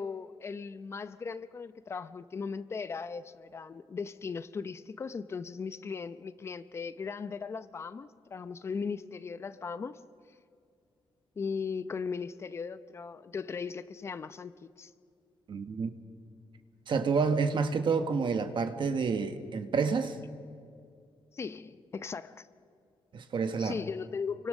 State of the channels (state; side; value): normal; both; correlation 0.69